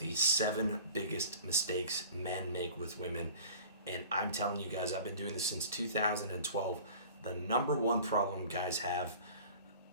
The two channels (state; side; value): inverted; both; correlation -0.44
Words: 7 biggest mistakes men make with women. And I'm telling you guys, I've been doing this since 2012. The number one problem guys have,